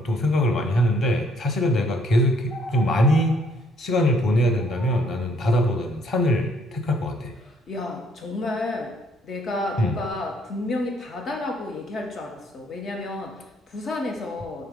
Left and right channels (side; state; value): both; normal; correlation 0.66